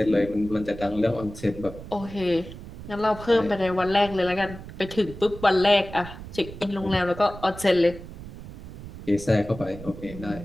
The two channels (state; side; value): noise; right; rumble, 13 dB below the sound